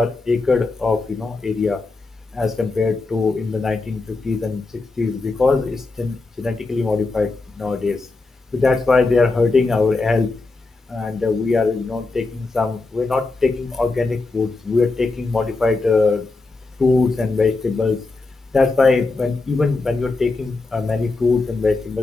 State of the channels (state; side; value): quieter; right; 3.6 dB